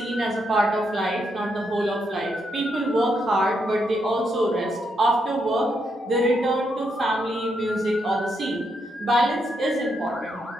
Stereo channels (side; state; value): both; normal; correlation 0.79